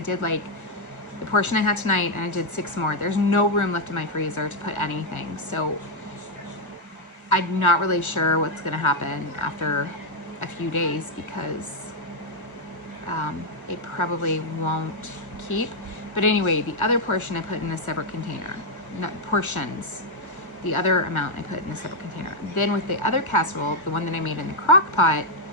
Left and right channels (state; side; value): late; right; 1.3 ms